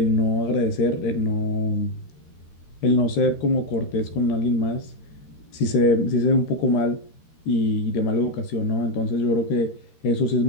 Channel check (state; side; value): late; right; 13 ms